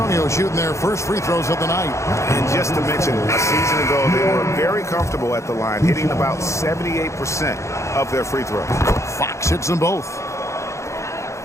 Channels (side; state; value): right; late; 0.14 ms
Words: shooting their first free throws of the night. And just to mention, a season ago, they were very comfortable at the line, hitting about 78% of their free throws. Fox hits them both.